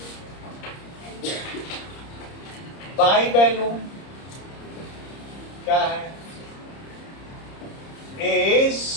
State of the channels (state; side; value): late; right; 30 ms